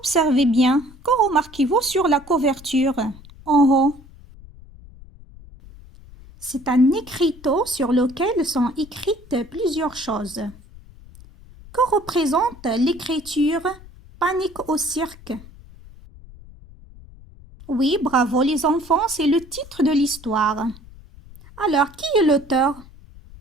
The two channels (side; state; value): left; noise; rumble, 20 dB below the sound